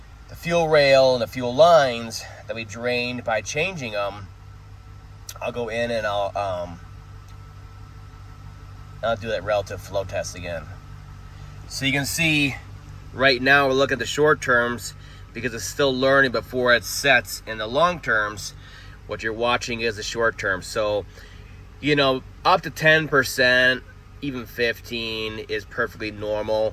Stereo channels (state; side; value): identical; both; correlation 1.00